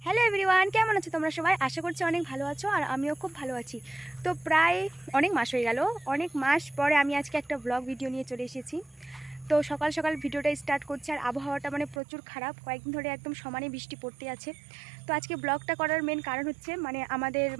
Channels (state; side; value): drops out; left; at 12.0 s